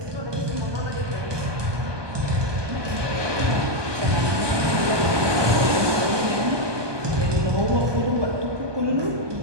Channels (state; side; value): late; left; 1.2 ms